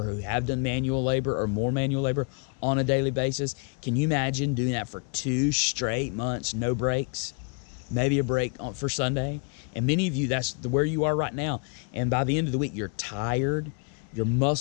who have done manual labor or more manual labor on a daily basis, can you imagine doing that for 2 straight months, no breaks? Maybe a break for Sunday. And many of you, that's where you are right now. And by the end of the week, you're tired, your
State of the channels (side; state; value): right; quieter; 38.0 dB